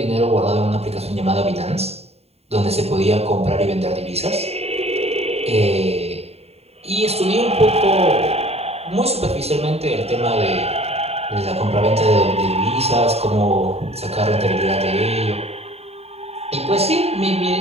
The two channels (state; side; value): late; left; 0.30 ms